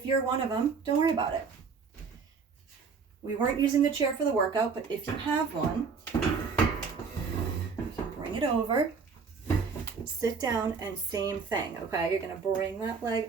you're one of them, don't worry about it. We weren't using the chair for the workout, but if you have one, you can bring it over, sit down, and same thing, okay? You're going to bring that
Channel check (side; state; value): left; quieter; 5.3 dB